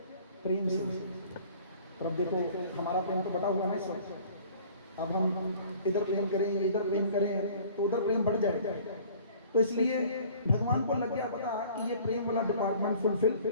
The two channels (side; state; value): both; inverted; correlation -0.51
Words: प्रेम से। और अब देखो हमारा प्रेम तो बटा हुआ है ना इस वक्त। अब हम इधर प्रेम करें, इधर प्रेम करें तो उधर प्रेम बढ़ जाएगा। तो इसलिए भगवान को लग गया पता कि ये प्रेम वाला डिपार्टमेंट फुलफिल